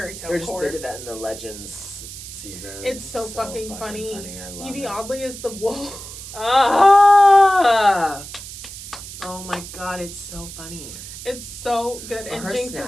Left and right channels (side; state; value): right; noise; hiss, 12 dB below the sound